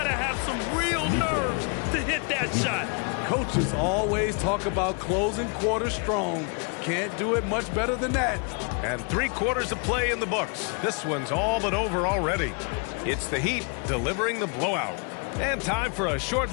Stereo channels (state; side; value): quieter; right; 37.5 dB